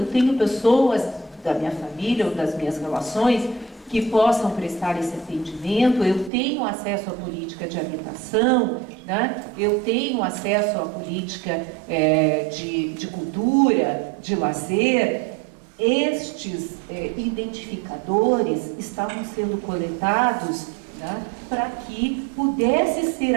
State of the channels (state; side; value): drops out; left; at 6.3 s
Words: tenho pessoas da minha família ou das minhas relações que possam prestar esse atendimento, eu tenho acesso à política de habitação, né? Eu tenho acesso à política de cultura, de lazer. Estes identificadores estavam sendo coletados, né, para que pudesse ser